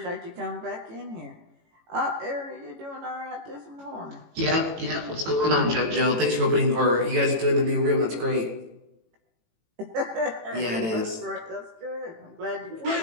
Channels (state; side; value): late; left; 18 ms